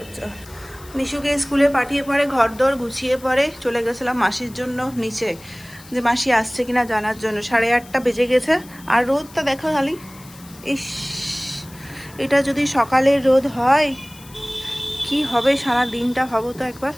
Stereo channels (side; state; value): left; noise; hiss, 21 dB below the sound